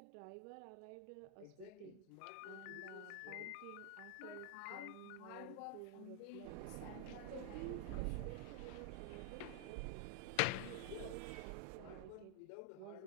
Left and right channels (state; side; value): different; both; correlation 0.00